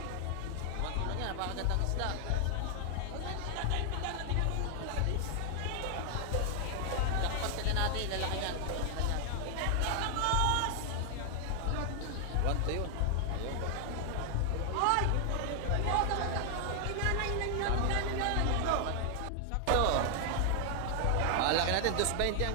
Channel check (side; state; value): both; different; correlation 0.00